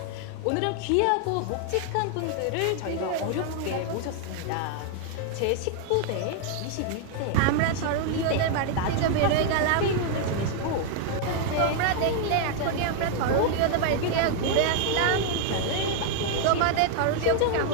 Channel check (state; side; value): different; both; correlation 0.00